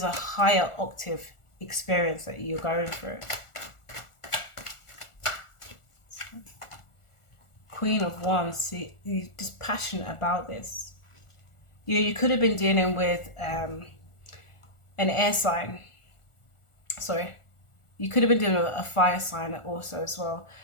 a higher octave experience that you're going through. Queen of Wands, see, you're just passionate about this. You could have been dealing with an air sign. Sorry. You could have been dealing with a fire sign also as well.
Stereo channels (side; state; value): right; late; 1.4 ms